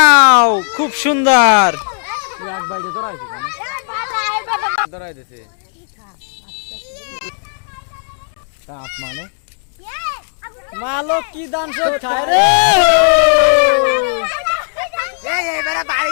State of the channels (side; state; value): right; silent; digital silence